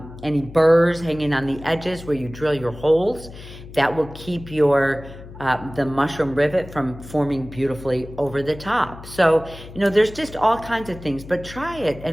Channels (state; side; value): noise; left; hum, 16 dB below the sound